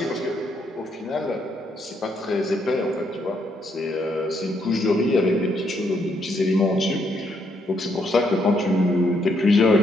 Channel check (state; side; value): normal; both; correlation 0.74